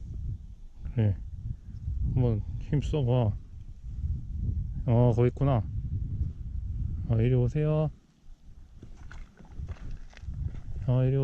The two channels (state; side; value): identical; both; correlation 1.00